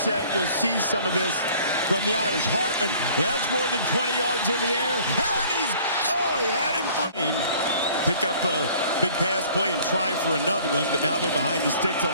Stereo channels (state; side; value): inverted; both; correlation -0.53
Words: you'll see some of this from the Irish. Hartman, that's more than 20 yards in the air. And he had him for him. Pick up a big pass play and try for another one, but now they're behind the sticks